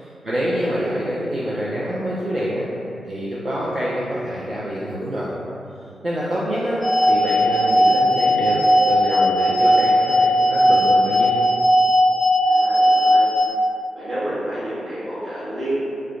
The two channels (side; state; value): both; normal; correlation 0.89